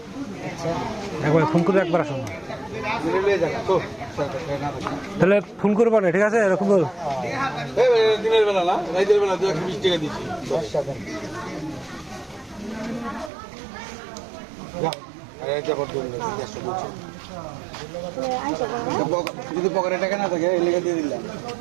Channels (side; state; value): left; drops out; at 13.3 s